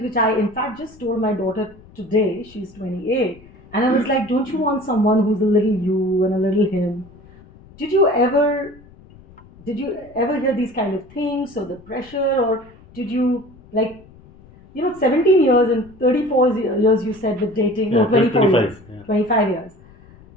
which I in fact just told my daughter today, she's 28, and I was like, don't you want someone who's a little you and a little him? Did you ever hear these kind of things, or the pressure, or did you 17 years and 34 years you said with dating, Yeah, or 24 25, years, yeah. 25 years.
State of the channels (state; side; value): noise; left; rumble, 24 dB below the sound